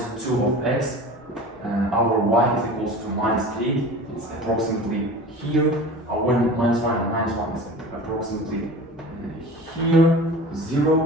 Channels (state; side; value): normal; both; correlation 0.37